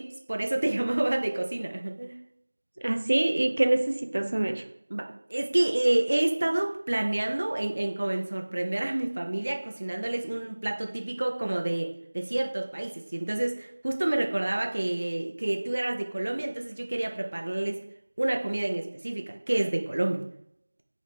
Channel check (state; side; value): inverted; both; correlation -1.00